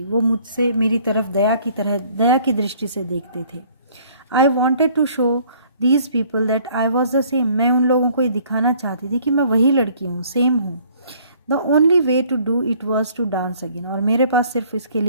वो मुझसे मेरी तरफ दया की दृष्टि से देखते थे. I wanted to show these people that I was the same, मैं उन लोगों को ये दिखाना चाहती थी कि मैं वही लड़की हूँ, सेम हूँ. The only way to do it was to dance again, और मेरे पास सिर्फ इसके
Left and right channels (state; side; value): inverted; both; correlation -0.58